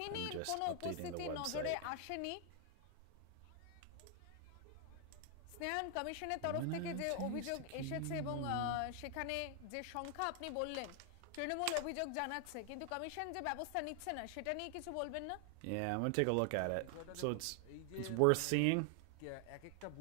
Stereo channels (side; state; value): both; different; correlation 0.00